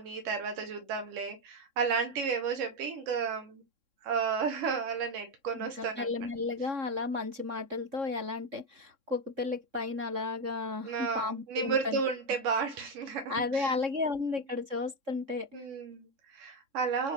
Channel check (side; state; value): left; late; 3.6 ms